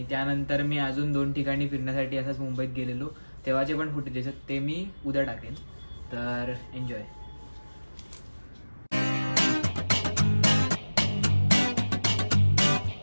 त्यानंतर मी अजून 2 ठिकाणी फिरण्यासाठी असंच मुंबईत गेलेलो, तेव्हाचे पण फुटेज आहेत, ते मी उद्या टाकेन. तर एन्जॉय.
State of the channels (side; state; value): both; inverted; correlation -1.00